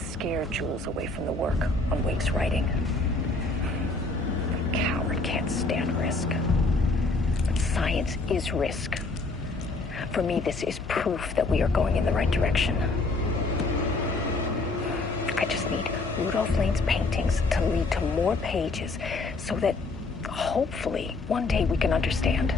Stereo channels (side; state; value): right; quieter; 3.4 dB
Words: scared Jules away from the work on Wake's writing. The coward can't stand risk. But science is risk. For me, this is proof that we are going in the right direction. I just need Rudolph Lane's paintings to lead to more pages so that hopefully one day we can understand.